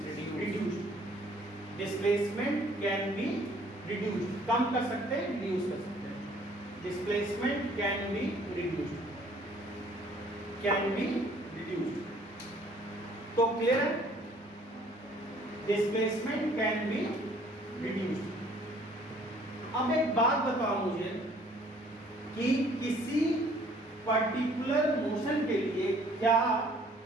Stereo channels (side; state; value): both; normal; correlation 0.58